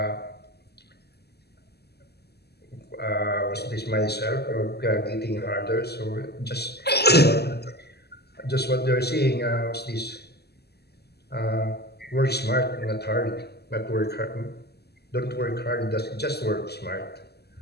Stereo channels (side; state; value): right; late; 0.47 ms